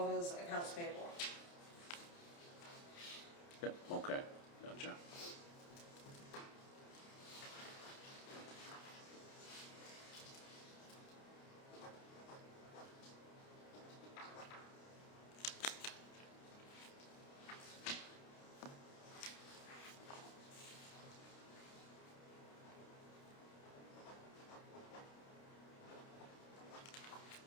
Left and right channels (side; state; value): right; late; 29 ms